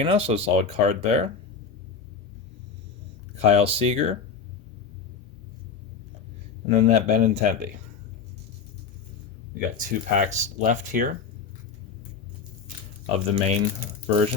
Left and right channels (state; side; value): quieter; right; 5.8 dB